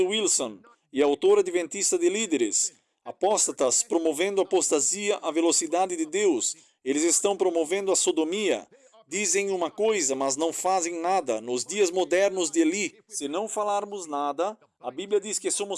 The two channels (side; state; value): both; identical; correlation 1.00